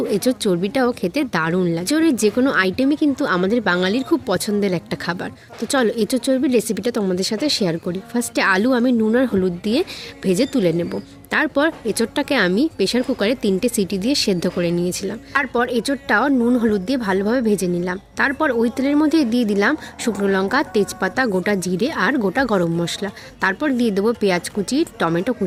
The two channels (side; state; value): both; identical; correlation 1.00